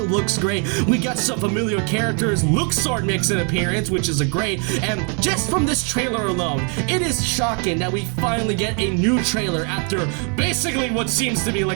looks great. We got some familiar characters. Luxord makes an appearance, which is great, and just from this trailer alone, it is shocking that we finally get a new trailer after basically what seems to be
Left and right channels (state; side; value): quieter; left; 37.7 dB